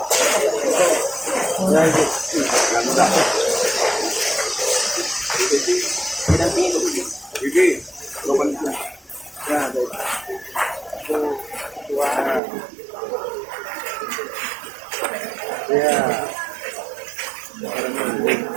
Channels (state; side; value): drops out; left; at 12.4 s